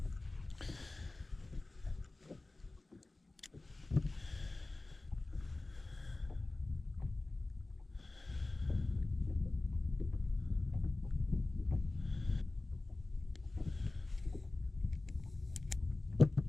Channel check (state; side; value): quieter; right; 3.1 dB